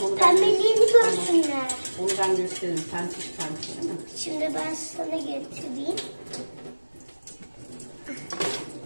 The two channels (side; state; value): both; inverted; correlation -1.00